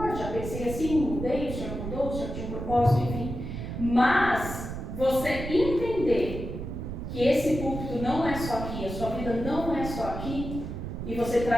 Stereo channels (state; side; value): noise; right; rumble, 6 dB below the sound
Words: já pensei assim, mudei, o Senhor mudou, o Senhor tinha um propósito, enfim. Mas você entender que esse púlpito não é só aqui, a sua vida não é só aqui, e você